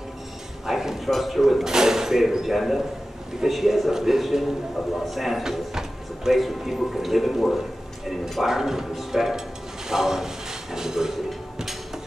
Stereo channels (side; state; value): both; normal; correlation 0.94